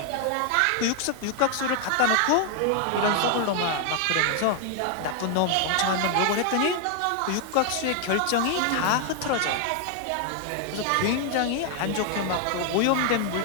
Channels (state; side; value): different; both; correlation 0.00